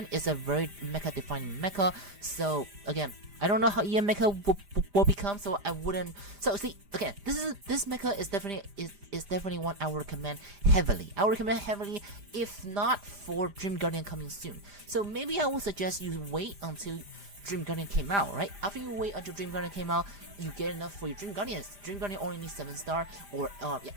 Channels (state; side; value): late; left; 5.0 ms